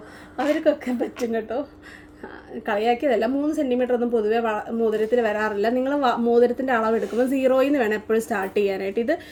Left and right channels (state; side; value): identical; both; correlation 1.00